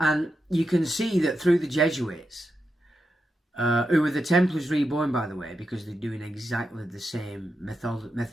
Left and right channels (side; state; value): both; normal; correlation 0.87